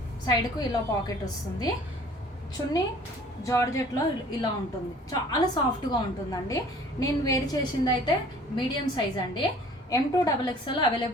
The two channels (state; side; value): normal; both; correlation 0.51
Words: సైడ్కు ఇలా పాకెట్ వస్తుంది. చున్నీ జార్జెట్లో ఇలా ఉంటుంది. చాలా సాఫ్ట్గా ఉంటుందండి. నేను వేర్ చేసింది అయితే మీడియం సైజ్ అండి. M2 XXL